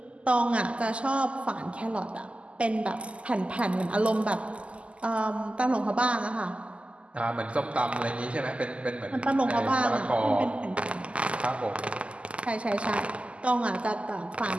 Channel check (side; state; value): left; late; 0.058 ms